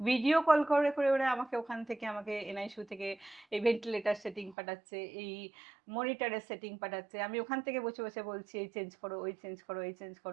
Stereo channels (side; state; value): left; drops out; at 4.5 s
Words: কল করে, করে ওরা আমাকে ওখান থেকে আমাকে এনআইসিইউ থেকে এই ভেন্টিলেটর সেটিং পাঠাচ্ছে, এই মনিটরের সেটিং পাঠাচ্ছে। আমি ওখান থেকে বসে, বসে বলছি এই চেঞ্জ করো, ওই চেঞ্জ করো, এই চেঞ্জ